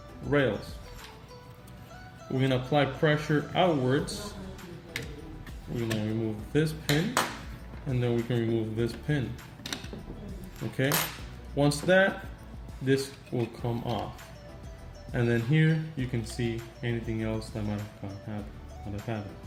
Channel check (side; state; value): both; identical; correlation 1.00